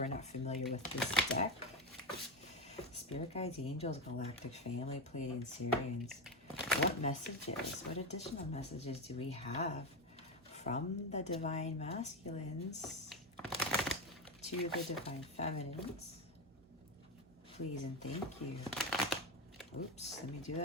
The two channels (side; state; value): both; normal; correlation 0.14